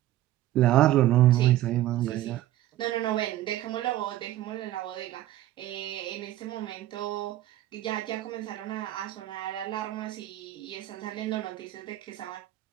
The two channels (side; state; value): left; quieter; 14.3 dB